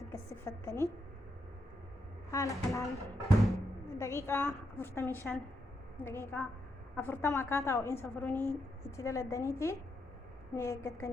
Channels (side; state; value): both; normal; correlation 0.81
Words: gassifattanii haala kanaan daqiiqaa 45 daqiiqaa 40 akkaataa ho'iinsa furunii itti daladaniiti ni